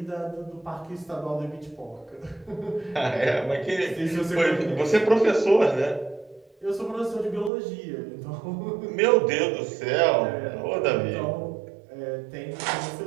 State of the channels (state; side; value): drops out; left; at 7.5 s